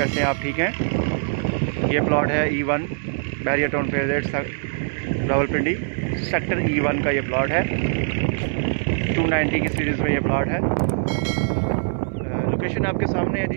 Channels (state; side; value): silent; left; digital silence